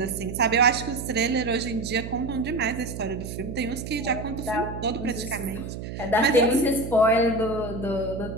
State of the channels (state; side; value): noise; right; hum, 8 dB below the sound